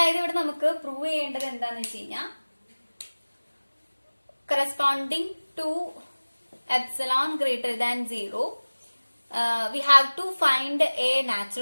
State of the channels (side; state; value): both; inverted; correlation -1.00